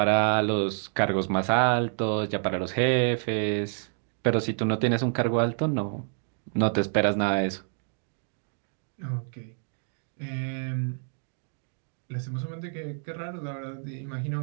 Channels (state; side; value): silent; left; 59 dB below the other